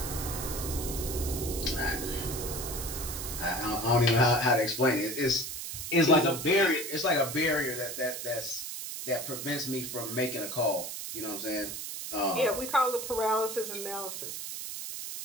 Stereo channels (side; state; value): right; noise; hiss, 6 dB below the sound